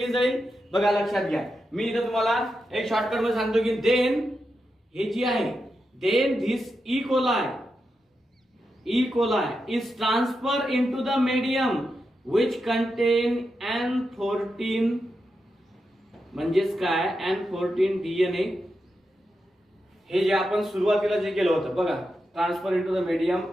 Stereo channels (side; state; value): both; normal; correlation 0.87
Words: जाईल, बघा लक्षात घ्या. मी इथं तुम्हाला एक शॉर्टकट मध्ये सांगतो की देन हे जी आहे, then this E coli is transferred into the medium which contain N14 म्हणजेच काय, N14 डीएनए. हे जे आपण सुरुवातीला जे केलं होतं बघा, transfer into the medium